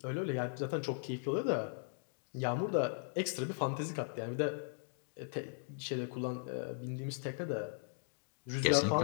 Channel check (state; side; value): silent; right; digital silence